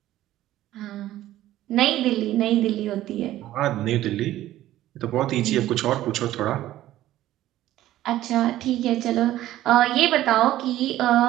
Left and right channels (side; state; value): left; quieter; 14.2 dB